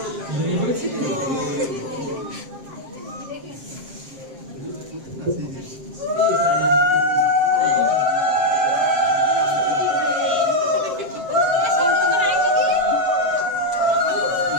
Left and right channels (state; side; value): late; left; 7.5 ms